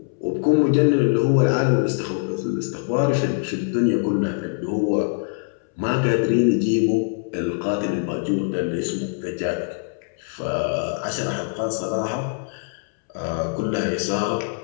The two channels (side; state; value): right; silent; 63 dB below the other